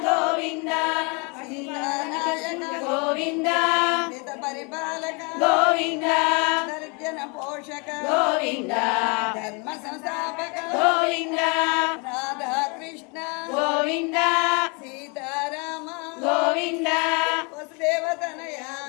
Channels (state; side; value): quieter; right; 32.4 dB